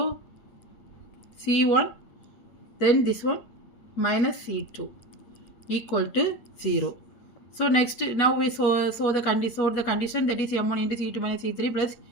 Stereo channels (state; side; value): late; right; 8.4 ms